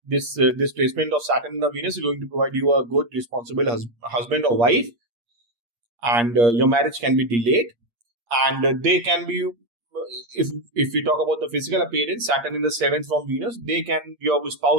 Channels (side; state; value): left; late; 8.5 ms